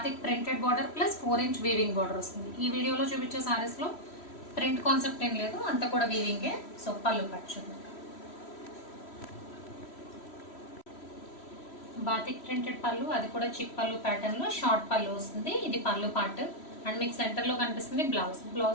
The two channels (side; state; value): right; late; 3.1 ms